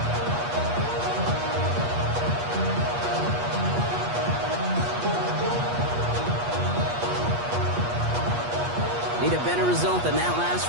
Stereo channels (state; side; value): late; left; 8.3 ms